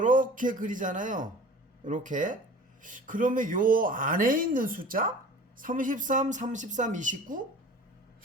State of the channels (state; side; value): normal; both; correlation 0.42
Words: 그리잖아요. 요렇게. 그러면 요 안에 있는 숫자 33, 33, 29